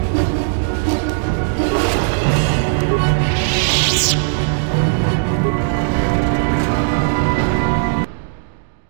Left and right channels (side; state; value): left; silent; digital silence